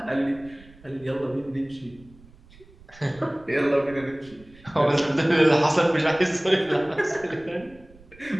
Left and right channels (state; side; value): noise; right; rumble, 24 dB below the sound